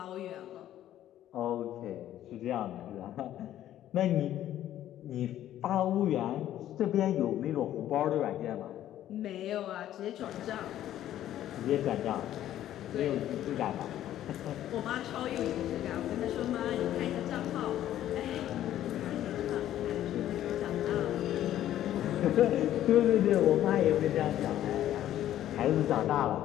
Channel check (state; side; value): quieter; right; 12.3 dB